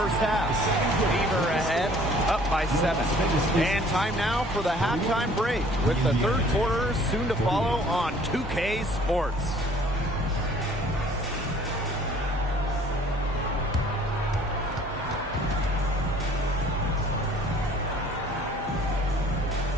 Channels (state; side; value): normal; both; correlation 0.54